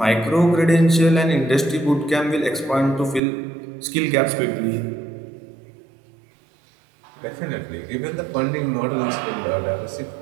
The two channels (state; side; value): drops out; left; at 3.2 s